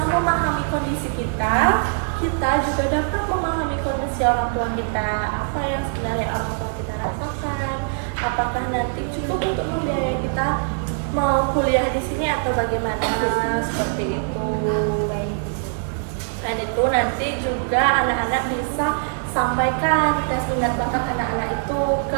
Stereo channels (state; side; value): silent; left; digital silence